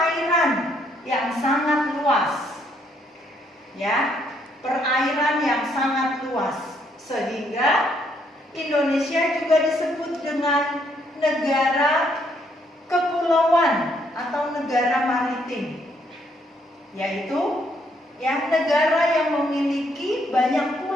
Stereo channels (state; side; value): normal; both; correlation 0.71